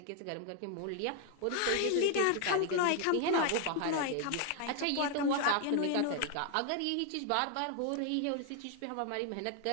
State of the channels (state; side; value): different; both; correlation 0.00